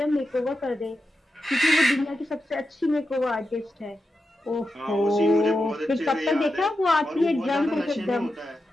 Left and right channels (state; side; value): normal; both; correlation 0.89